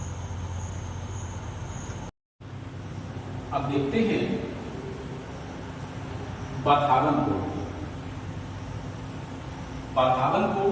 अब देखते हैं पाथागनकोट।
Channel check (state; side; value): identical; both; correlation 1.00